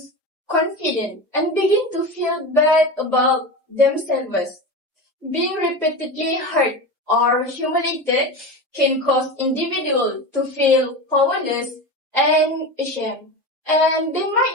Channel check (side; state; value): both; normal; correlation 0.24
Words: confidence and begin to feel bad about themselves. Being repeatedly hurt or humiliated can cause individuals to feel powerless and ashamed, and they